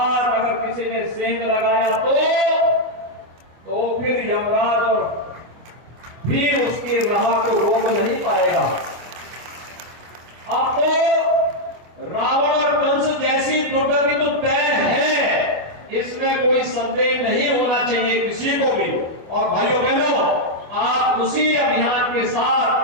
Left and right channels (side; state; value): left; late; 25 ms